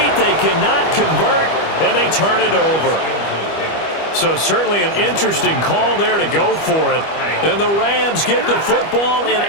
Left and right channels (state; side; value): late; right; 25 ms